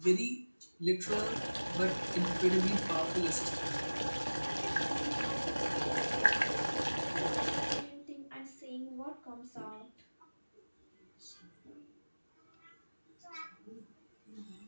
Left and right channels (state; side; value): inverted; both; correlation -1.00